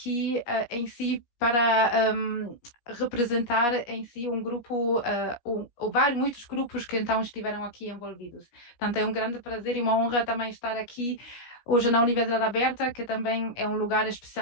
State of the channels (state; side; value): late; right; 17 ms